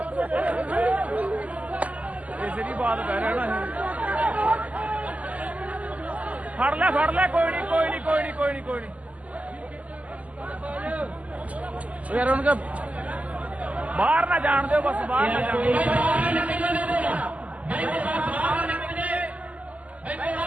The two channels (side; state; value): left; late; 0.072 ms